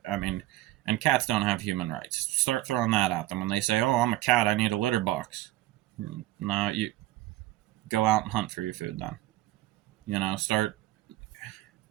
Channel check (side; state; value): left; quieter; 16.1 dB